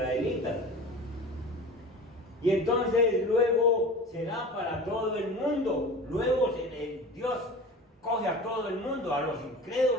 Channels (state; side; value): normal; both; correlation 0.36